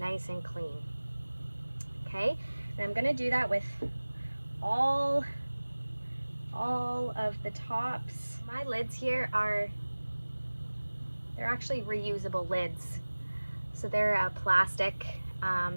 and clean. Okay, and I'm going to do that with all of the tops. My lids here they're actually reusable lids. So they're plastic,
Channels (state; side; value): inverted; both; correlation -1.00